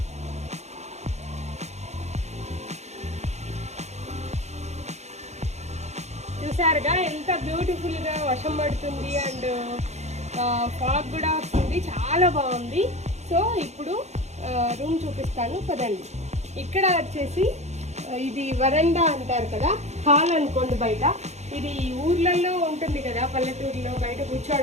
చూసారుగా ఎంత బ్యూటిఫుల్గా వర్షం పడుతుంది అండ్ ఫాగ్ కూడా వస్తుంది, చాలా బాగుంది. సో ఇప్పుడు రూమ్ చూపిస్తాను పదండి. ఇక్కడ వచ్చేసి ఇది వరండా అంటారు కదా, హాల్ అనుకోండి. బయట ఇది ఊర్లలో ఉంటుంది కదా, పల్లెటూరులో బయట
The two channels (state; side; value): late; left; 0.32 ms